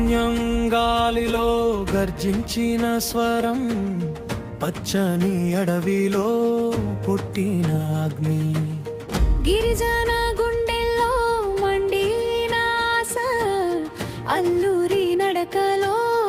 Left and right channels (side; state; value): both; identical; correlation 1.00